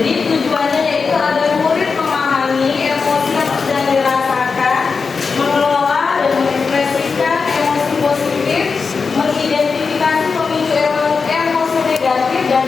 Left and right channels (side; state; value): right; quieter; 5.0 dB